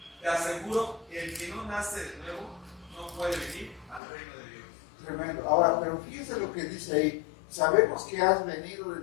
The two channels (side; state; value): right; drops out; at 4.0 s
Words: te aseguro que el que no nace de nuevo no puede venir al reino de Dios. Tremendo. Ahora, pero fíjense lo que dice ahí. Sabemos que has venido